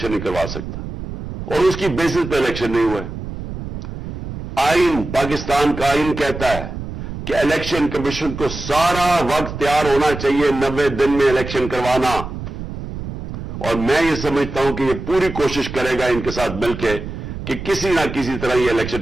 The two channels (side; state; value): right; noise; rumble, 8 dB below the sound